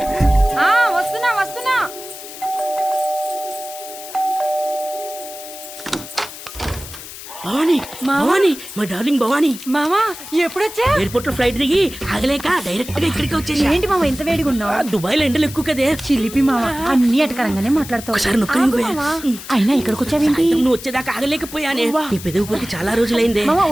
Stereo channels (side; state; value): left; noise; hiss, 13 dB below the sound